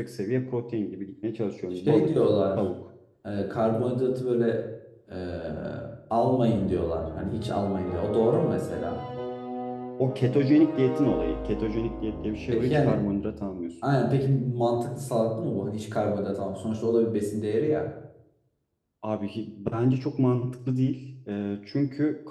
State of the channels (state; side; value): identical; both; correlation 1.00